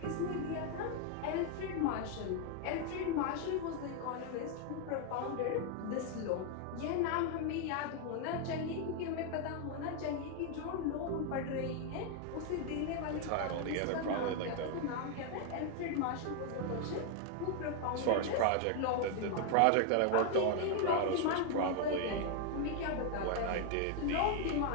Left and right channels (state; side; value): different; both; correlation 0.00